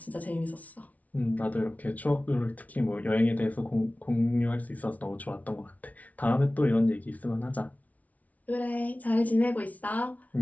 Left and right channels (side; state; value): right; late; 0.071 ms